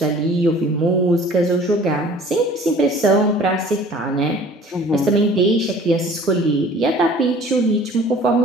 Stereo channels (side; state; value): both; normal; correlation 0.49